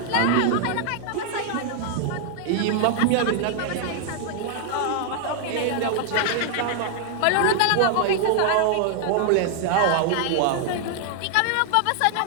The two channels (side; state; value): both; different; correlation 0.00